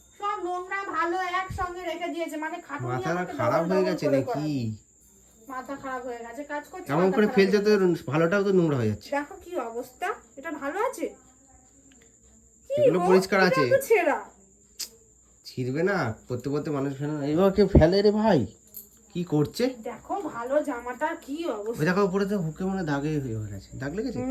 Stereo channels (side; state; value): both; identical; correlation 1.00